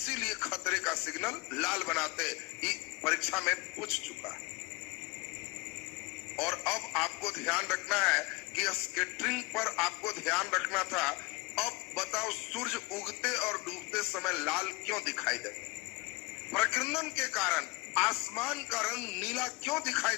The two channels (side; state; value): right; quieter; 23.7 dB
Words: इसीलिए खतरे का सिग्नल लाल बनाते। ये परीक्षा में पूछ चुका है। और अब आपको ध्यान रखना है कि स्कैटरिंग पर आपको ध्यान रखना था। अब बताओ, सूर्य उगते और डूबते समय लाल क्यों दिखाई देता? प्रकीर्णन के कारण आसमान का रंग नीला क्यों दिखाई